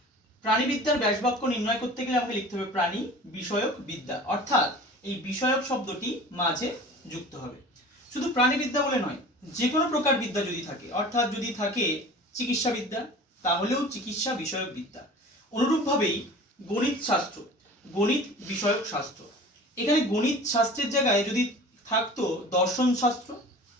প্রাণীবিদ্যার ব্যাসবাক্য নির্ণয় করতে গেলে আমাকে লিখতে হবে প্রাণী বিষয়ক বিদ্যা, অর্থাৎ এই বিষয়ক শব্দটি মাঝে যুক্ত হবে। শুধু প্রাণীবিদ্যা বলে নয়, যে কোনো প্রকার বিদ্যা যদি থাকে, অর্থাৎ যদি থাকে চিকিৎসা বিদ্যা, তাহলেও চিকিৎসা বিষয়ক বিদ্যা। অনুরূপভাবেই গণিত শাস্ত্র, গণিত বিষয়ক শাস্ত্র। এখানে গণিত শাস্ত্রের জায়গায় যদি থাকতো দর্শন শাস্ত্র,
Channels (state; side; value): normal; both; correlation 0.41